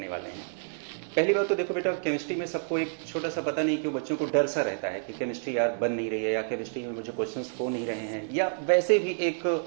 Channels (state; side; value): silent; left; digital silence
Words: वाले हैं। पहली बात तो देखो बेटा, केमिस्ट्री में सबको एक छोटा सा पता नहीं क्यों बच्चों को डर सा रहता है कि केमिस्ट्री यार बन नहीं रही है, या केमिस्ट्री में मुझे क्वेश्चंस हो नहीं रहे हैं, या वैसे भी एक